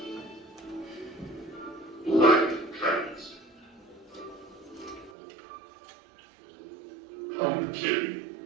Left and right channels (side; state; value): left; drops out; at 5.1 s